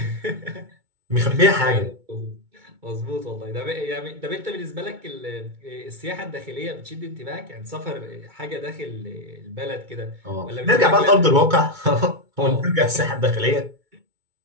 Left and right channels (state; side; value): late; left; 2.2 ms